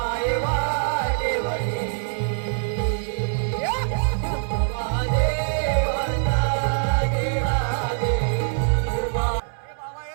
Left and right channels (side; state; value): left; silent; digital silence